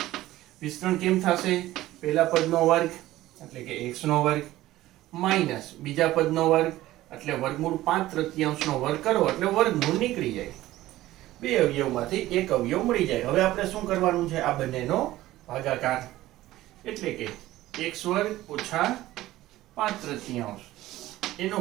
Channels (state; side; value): quieter; left; 15.9 dB